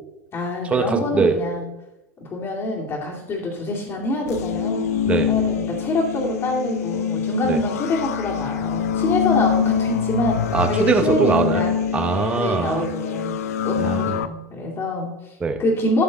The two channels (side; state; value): both; normal; correlation 0.23